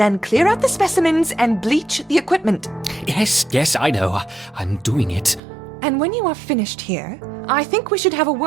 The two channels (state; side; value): drops out; left; at 5.4 s